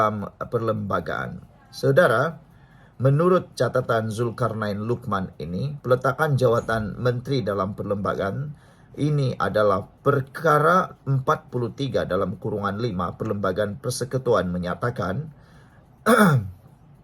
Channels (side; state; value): both; identical; correlation 1.00